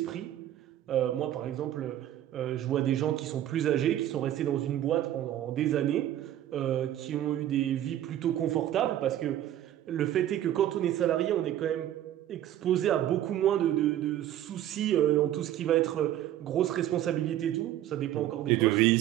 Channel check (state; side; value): quieter; left; 12.3 dB